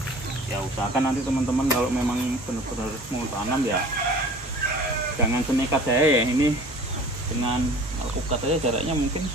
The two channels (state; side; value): normal; both; correlation 0.45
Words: Ya usahakan nanti teman-teman kalau memang benar-benar mau tanam ya jangan senekat saya ya. Ini dengan alpukat aja jaraknya mungkin